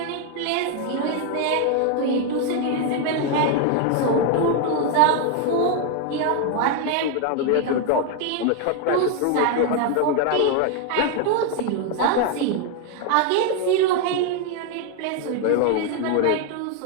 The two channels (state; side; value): different; both; correlation 0.01